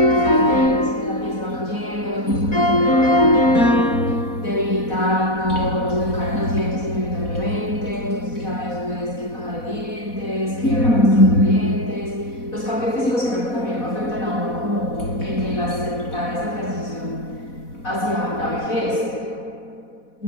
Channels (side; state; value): right; late; 4.1 ms